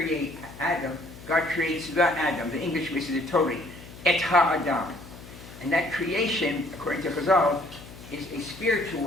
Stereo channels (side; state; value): left; noise; hum, 17 dB below the sound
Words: Adam. God creates the Adam. The English misses it totally. Et HaAdam. And that creation, according to Chazal, is a spiritual